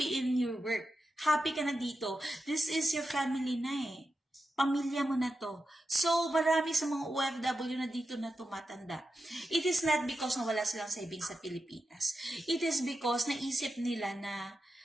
in your work. Happy ka na dito. This is your family na eh. Pamilya mo na to. So, marami sa mga OFW na dito na tumatanda. It is not because na wala silang savings sa Pilipinas. It is because naisip nila na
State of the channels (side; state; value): both; normal; correlation 0.90